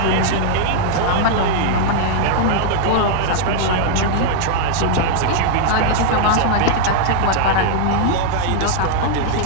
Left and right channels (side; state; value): both; different; correlation -0.01